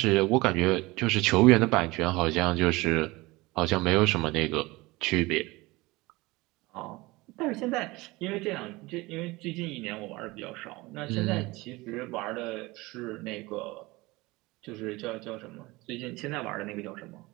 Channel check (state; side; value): quieter; left; 21.8 dB